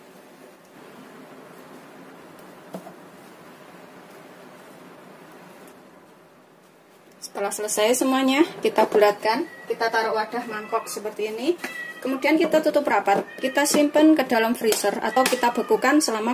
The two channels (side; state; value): both; identical; correlation 1.00